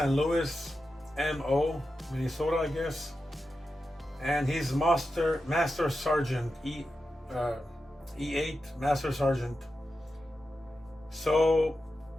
Louis, MO, Minnesota, I guess. And he's master sergeant, E8 master sergeant. So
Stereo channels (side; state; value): both; normal; correlation 0.90